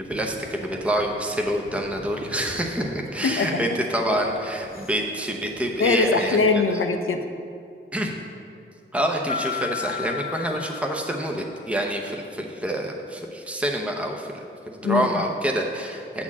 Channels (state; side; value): normal; both; correlation 0.41